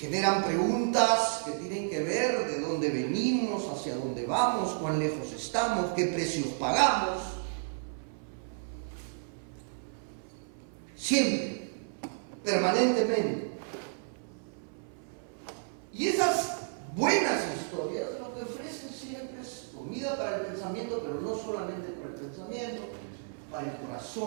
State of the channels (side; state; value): left; silent; 56 dB below the other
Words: preguntas que tienen que ver de dónde venimos, hacia dónde vamos, cuán lejos estamos, qué precios pagamos. Siempre, permanentemente. Y esas buenas historias lo que ofrecen siempre es comida para el pensamiento, pero no solamente para el pensamiento, para el